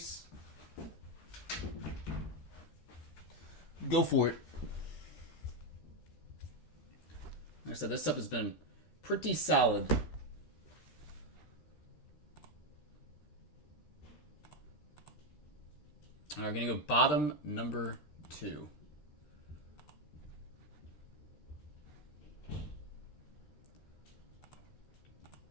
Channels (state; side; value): late; right; 13 ms